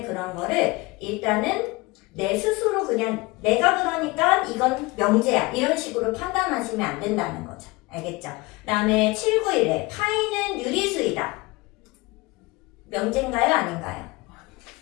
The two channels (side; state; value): right; quieter; 23.2 dB